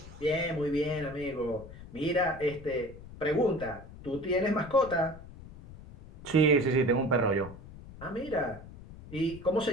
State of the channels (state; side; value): noise; left; rumble, 16 dB below the sound